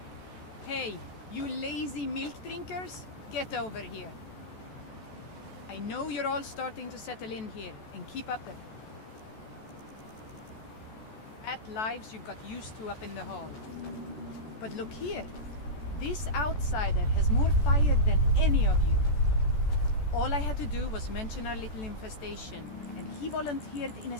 Hey, you lazy milk drinkers, get over here. I know you're all starting to settle in here, and keep up the fat lives you've got used to up in the hall. But look here, this outsider has more fire than any of you. All I had to do was mention our little infestation, and he volunteered in a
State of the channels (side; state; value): right; late; 14 ms